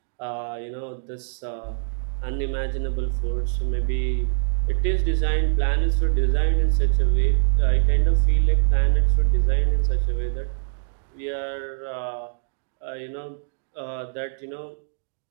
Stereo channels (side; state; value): left; silent; digital silence